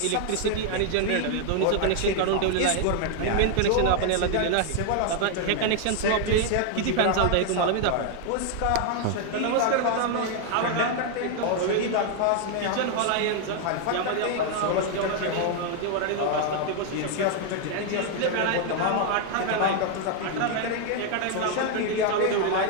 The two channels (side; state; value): both; different; correlation 0.00